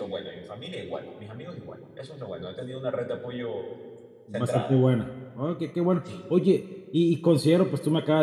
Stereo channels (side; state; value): both; identical; correlation 1.00